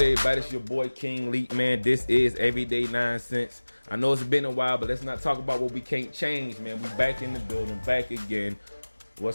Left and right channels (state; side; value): inverted; both; correlation -1.00